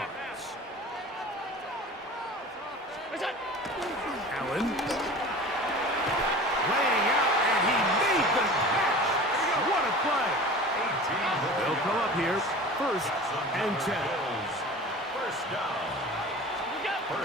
Allen laying out, and he made the catch. What a play. They'll come up here first and 10. First down.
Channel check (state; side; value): normal; both; correlation 0.38